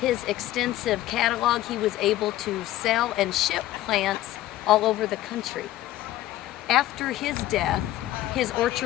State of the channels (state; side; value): quieter; right; 14.8 dB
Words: extensive catalog, he was able to sell and ship plants all over the country. After his death, his